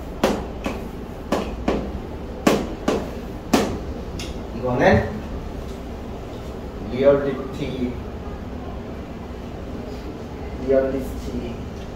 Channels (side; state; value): both; identical; correlation 1.00